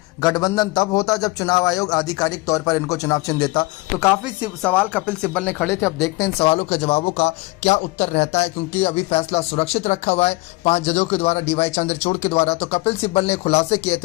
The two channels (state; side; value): quieter; right; 23.0 dB